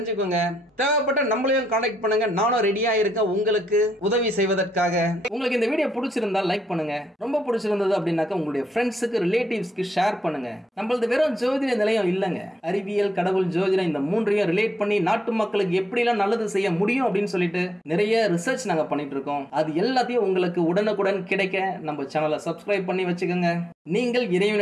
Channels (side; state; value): both; normal; correlation 0.81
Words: தேவைப்பட்ட நம்மளையும் கான்டாக்ட் பண்ணுங்க. நானும் ரெடியா இருக்கேன் உங்களுக்கு உதவி செய்வதற்காக. உங்களுக்கு இந்த வீடியோ பிடிச்சிருந்தா லைக் பண்ணுங்க. ரொம்ப பிடிச்சிருந்தது அப்படின்னாக்கா உங்களுடைய ஃப்ரெண்ட்ஸுக்கு, ரிலேட்டிவ்ஸ்க்கு ஷேர் பண்ணுங்க. நம்மளது வெறும் ஜோதிட நிலையம் இல்லங்க. அறிவியல், கடவுள், ஜோதிடம் இந்த மூன்றையும் ரிலேட் பண்ணி நாட்டு மக்களுக்கு எப்படி எல்லாம் நல்லது செய்ய முடியும் அப்படின்னு சொல்லிட்டு நிறைய ரிசர்ச் நாங்க பண்ணிட்டு இருக்கோம். அது எல்லாத்தையும் உங்களுக்கு உடனுக்குடன் கிடைக்க நம்ம சேனலை சப்ஸ்கிரைப் பண்ணி வச்சுக்கோங்க. நீங்கள்